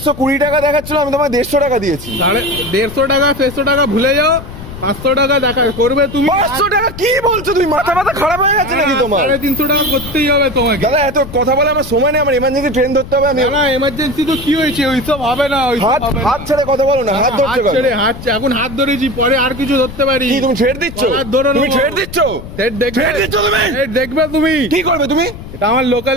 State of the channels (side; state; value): left; noise; rumble, 12 dB below the sound